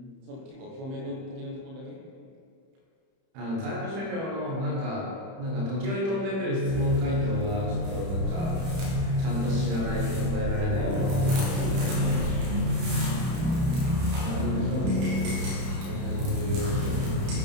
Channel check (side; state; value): left; late; 31 ms